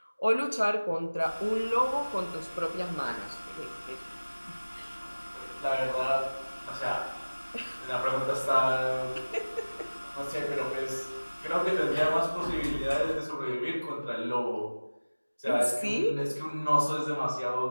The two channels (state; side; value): inverted; both; correlation -1.00